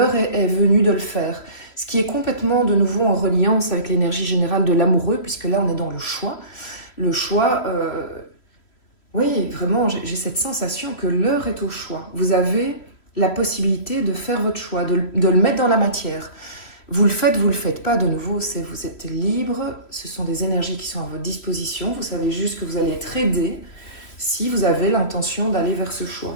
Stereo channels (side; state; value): right; late; 3.1 ms